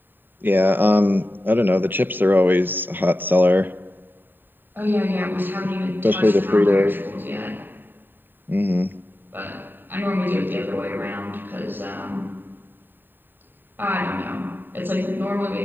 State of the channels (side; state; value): left; late; 0.093 ms